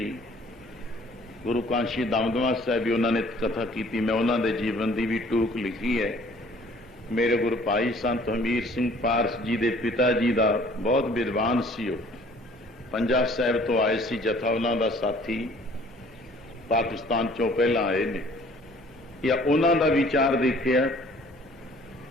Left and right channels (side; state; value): both; normal; correlation 0.54